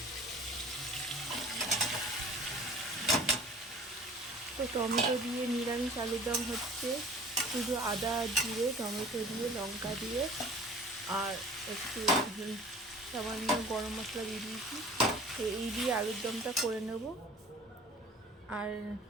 তো টমেটো দিয়ে নিরামিষ আলুর দম হচ্ছে, শুধু আদা জিরে টমেটো দিয়ে লঙ্কা দিয়ে আর একটু সামান্য গরম মশলা দিয়ে দিয়েছি। তো এই দিয়ে আলুর দমটা করে নেব। আর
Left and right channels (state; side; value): normal; both; correlation 0.45